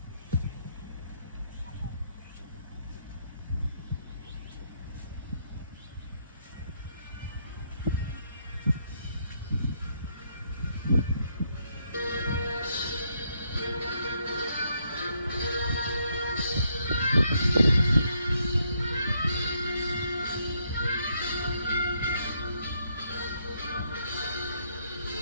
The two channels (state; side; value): inverted; both; correlation -0.74